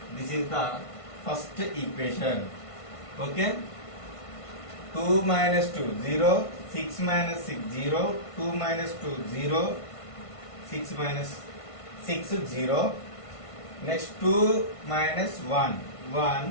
This is the first equation. Okay. 2 minus 2, 0. 6 minus 6, 0. 2 minus 2, 0. 6 minus 6, 0. Next 2 minus 1,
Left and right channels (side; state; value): right; late; 1.5 ms